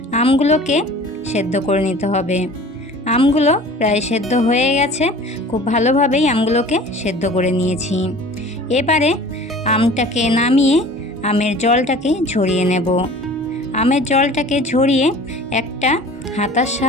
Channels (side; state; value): both; normal; correlation 0.44